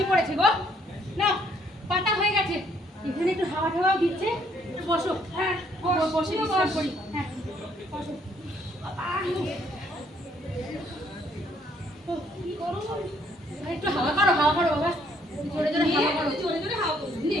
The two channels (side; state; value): both; normal; correlation 0.67